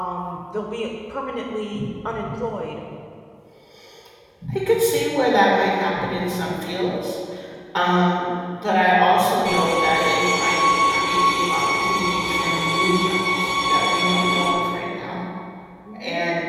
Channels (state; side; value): identical; both; correlation 1.00